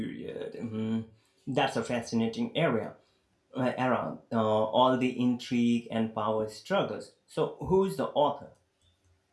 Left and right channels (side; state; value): both; identical; correlation 1.00